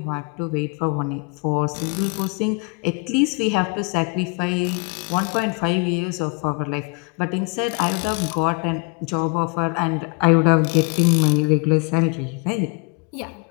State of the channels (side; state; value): right; quieter; 31.7 dB